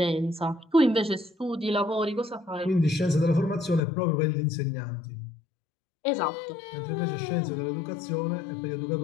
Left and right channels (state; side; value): drops out; right; at 3.8 s